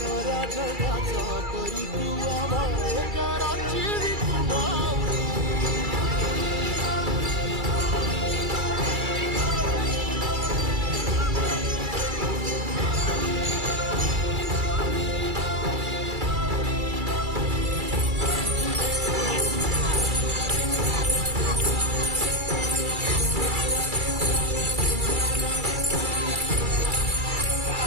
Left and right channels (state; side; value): late; left; 2.3 ms